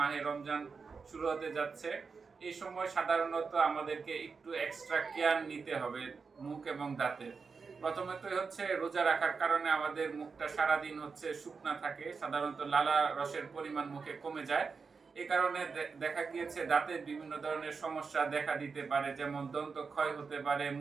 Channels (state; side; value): quieter; left; 5.1 dB